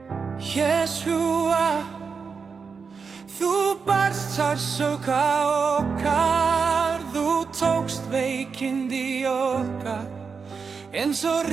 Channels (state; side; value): quieter; left; 5.4 dB